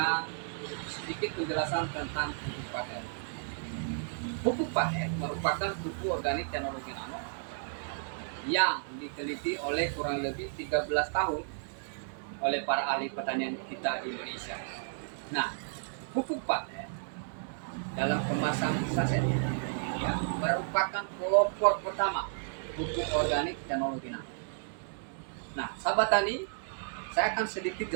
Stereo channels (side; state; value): left; silent; 56 dB below the other